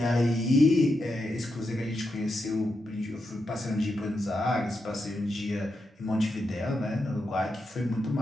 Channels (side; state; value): both; normal; correlation 0.86